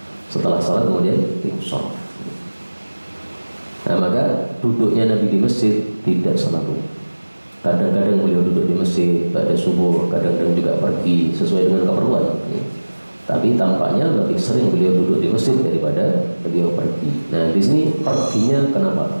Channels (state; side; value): inverted; both; correlation -1.00